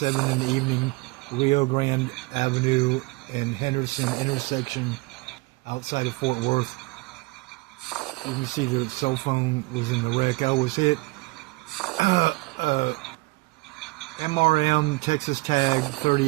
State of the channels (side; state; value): left; quieter; 24.1 dB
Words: in the evening, Rio Grande Avenue and Henderson intersection outside of Fort Worth. You can see the cell phone was in the wreck. I was hit. MRM Texas tag